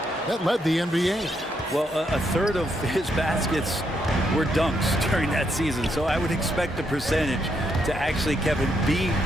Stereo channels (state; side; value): normal; both; correlation 0.77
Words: That led the NBA. Well, a third of his baskets were dunks during that season, so I would expect the percentage to actually, Kevin, be